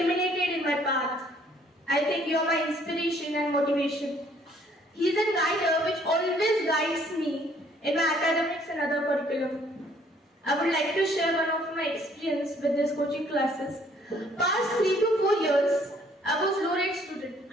in my path. I think you're my inspiration and motivation. He's a guider which always guides me in my academics and other curriculum. I would like to share one of my experience with these coaching classes. Past 3 to 4 years, I was low-rate student.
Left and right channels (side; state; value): both; normal; correlation 0.62